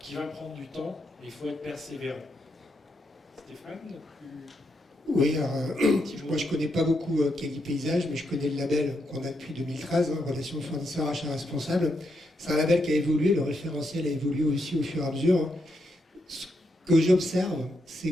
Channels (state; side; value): normal; both; correlation 0.81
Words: va prendre du temps, mais il faut être persévérant. Stéphane, Oui, alors, moi je connais pas beaucoup Quali Paysage, mais je connais le label qu'on a depuis 2013, relation fournisseur achat responsable. C'est un label qui a évolué, le référentiel a évolué aussi au fur et à mesure. Ce que j'observe,